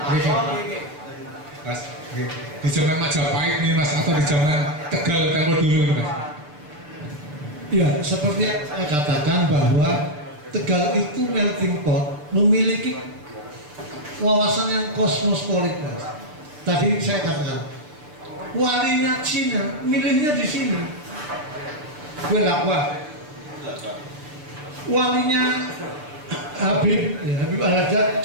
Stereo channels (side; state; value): left; late; 6.7 ms